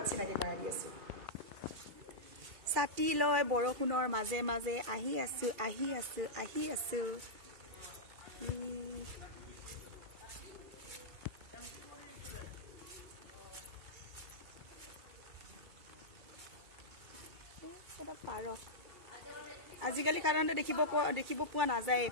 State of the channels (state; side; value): late; left; 2.3 ms